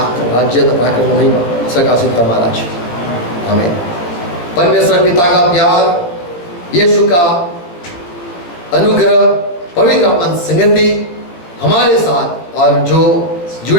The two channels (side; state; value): right; late; 17 ms